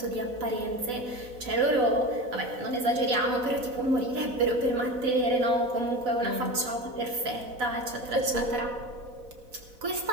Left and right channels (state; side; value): late; left; 4.0 ms